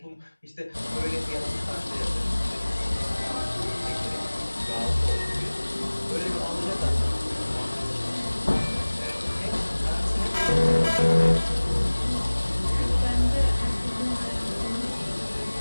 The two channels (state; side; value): inverted; both; correlation -1.00